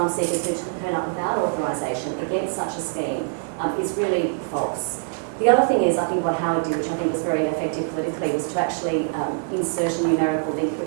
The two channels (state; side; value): silent; left; digital silence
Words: seekers who turn up without authorisation against such a scheme is really false. The other thing is, I think what Howard did, which I think was very effective politically, was to actually insert a numerical link